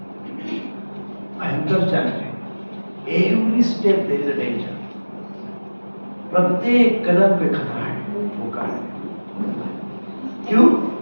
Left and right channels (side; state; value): both; inverted; correlation -1.00